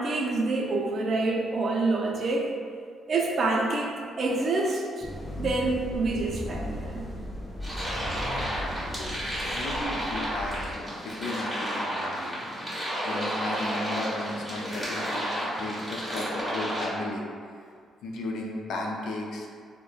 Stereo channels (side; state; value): both; normal; correlation 0.74